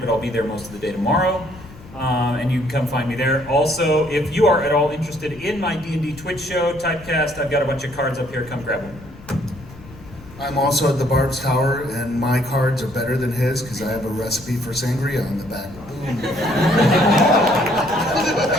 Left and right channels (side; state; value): left; noise; rumble, 19 dB below the sound